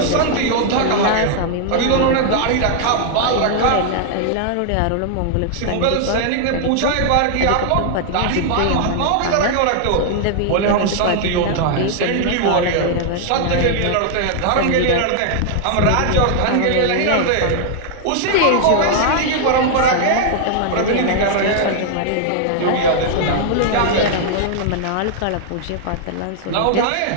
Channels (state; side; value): different; both; correlation 0.00